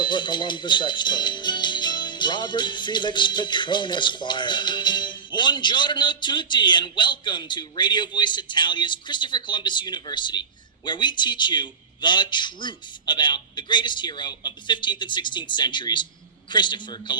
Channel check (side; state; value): left; quieter; 5.8 dB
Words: Columbus expert, Robert Felix Petrone, Esquire. Buongiorno tutti, and welcome to Radio Voice Italia's Christopher Columbus University, where we teach you the truth about the greatest hero of the 15th and 16th centuries, Christopher